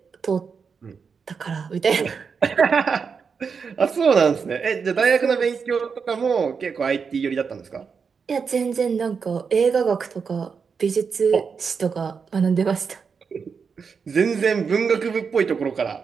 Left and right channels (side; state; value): left; quieter; 5.8 dB